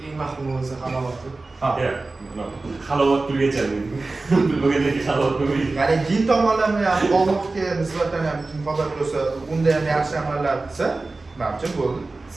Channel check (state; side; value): quieter; left; 3.4 dB